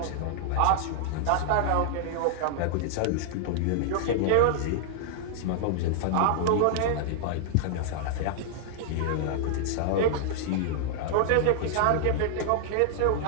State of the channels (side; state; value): both; different; correlation -0.01